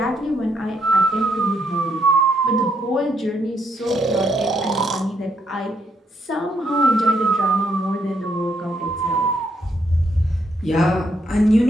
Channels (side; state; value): both; normal; correlation 0.75